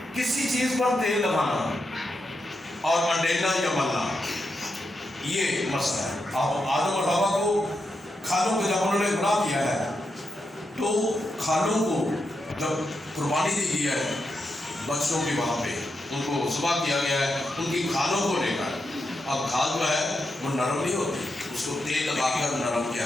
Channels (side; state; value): both; normal; correlation 0.85